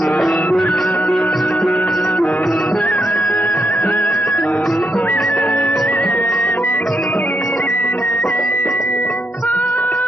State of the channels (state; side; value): normal; both; correlation 0.80